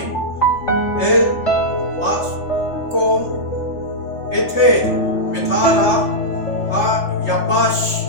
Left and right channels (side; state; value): right; late; 3.4 ms